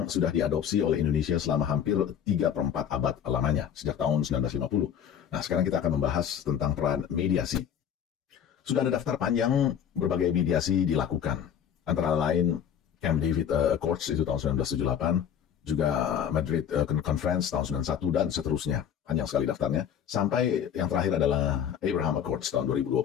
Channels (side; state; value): right; quieter; 8.9 dB